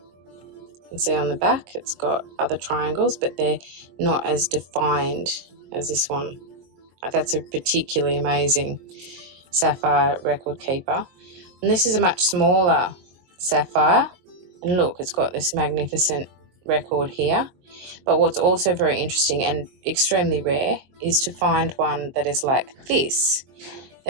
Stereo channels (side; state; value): left; late; 22 ms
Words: You can see on the back it's got other triangles, but they're not as defined as this one. That's a particularly amazing sapphire record keeper. And this is a much smaller sapphire. And look, it's got this magnificent record here. But what's also very interesting and extremely rare is to find one that is like this.